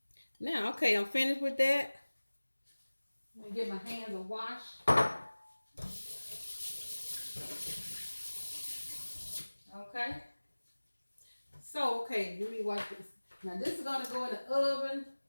Now, okay, I'm finished with that. Let me get my hands a wash. Okay. So, okay, let me wash this. Now, this is going to go in the oven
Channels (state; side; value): inverted; both; correlation -1.00